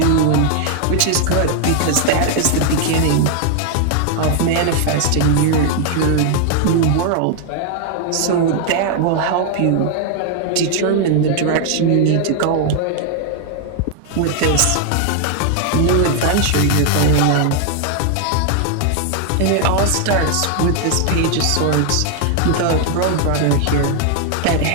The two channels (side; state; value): both; different; correlation 0.00